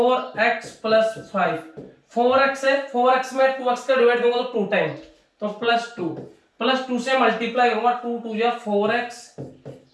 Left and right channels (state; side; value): identical; both; correlation 1.00